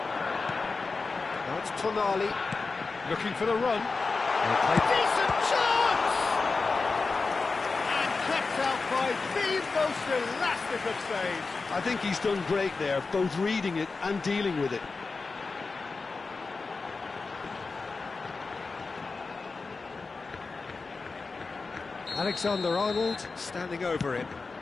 Now it's Tonali looking for the run. Decent chance! And kept out by the most elastic of saves. I think he's done great there, both reading it and dealing with it. Alexander-Arnold standing over him.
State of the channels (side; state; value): right; quieter; 4.1 dB